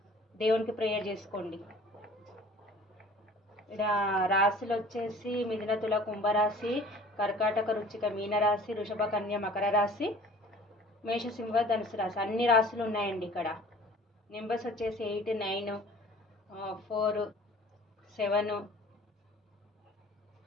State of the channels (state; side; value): normal; both; correlation 0.48